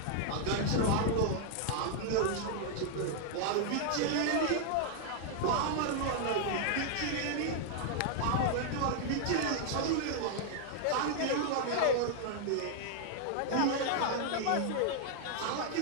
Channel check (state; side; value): different; both; correlation 0.00